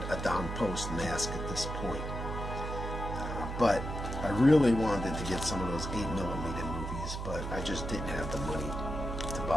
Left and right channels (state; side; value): noise; right; hum, 5 dB below the sound